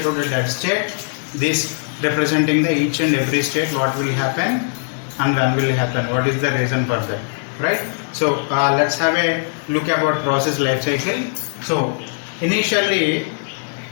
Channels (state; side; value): silent; right; 58 dB below the other